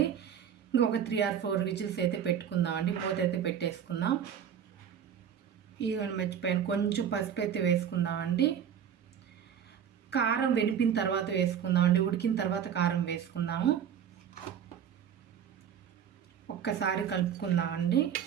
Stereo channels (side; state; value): left; quieter; 8.6 dB